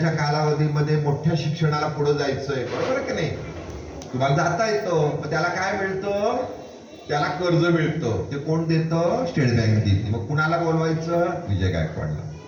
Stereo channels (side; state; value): both; identical; correlation 1.00